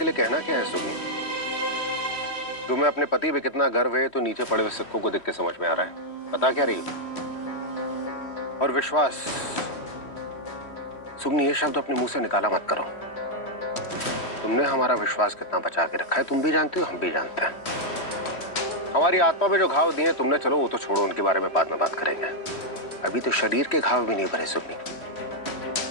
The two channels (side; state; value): right; late; 3.1 ms